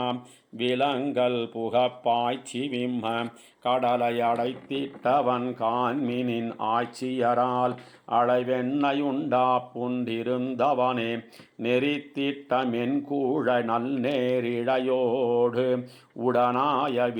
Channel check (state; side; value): identical; both; correlation 1.00